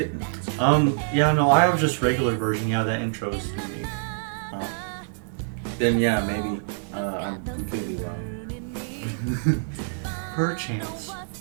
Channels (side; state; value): left; silent; digital silence